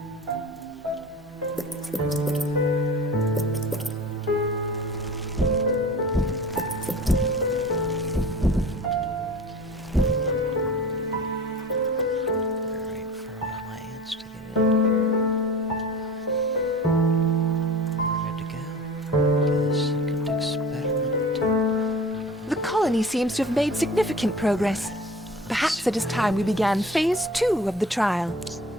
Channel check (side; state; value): both; normal; correlation 0.39